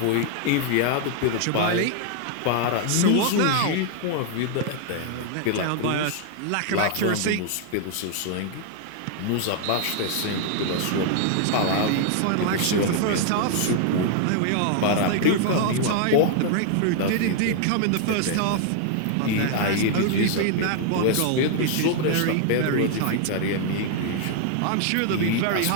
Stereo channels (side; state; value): both; different; correlation 0.00